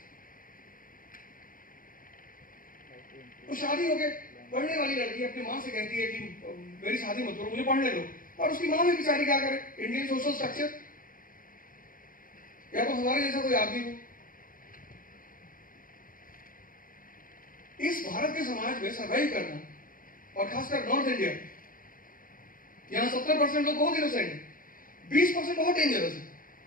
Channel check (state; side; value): late; right; 0.40 ms